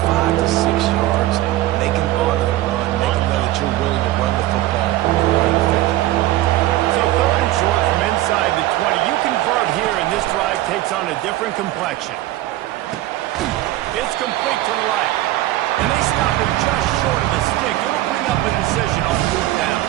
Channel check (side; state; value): left; quieter; 15.7 dB